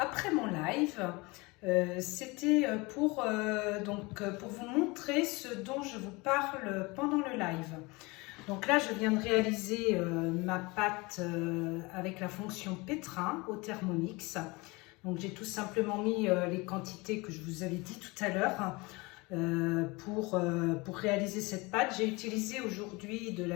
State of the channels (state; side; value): quieter; right; 25.0 dB